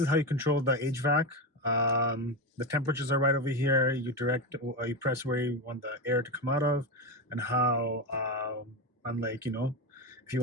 how you control the HVAC. The temperatures are right over here. You press where you want the air to come out of, and how, unlike, you know, if you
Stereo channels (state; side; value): normal; both; correlation 0.15